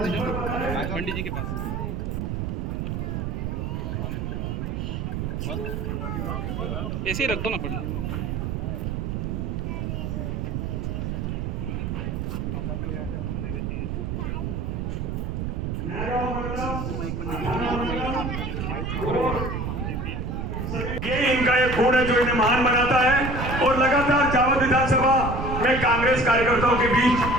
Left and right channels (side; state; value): right; noise; rumble, 2 dB below the sound